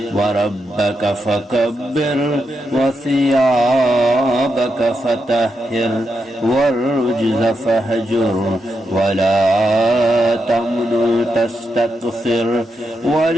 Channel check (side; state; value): both; normal; correlation 0.84